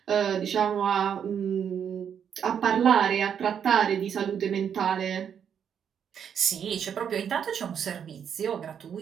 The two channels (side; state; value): left; quieter; 8.1 dB